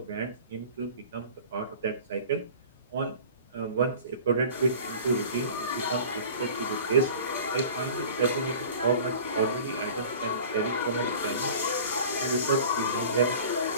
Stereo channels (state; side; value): inverted; both; correlation -0.41